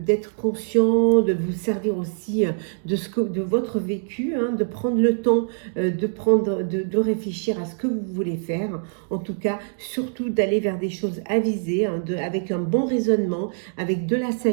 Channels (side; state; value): left; silent; digital silence